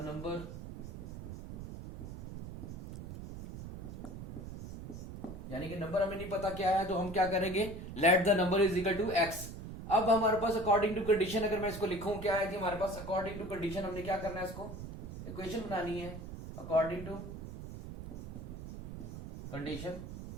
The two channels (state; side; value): noise; right; rumble, 10 dB below the sound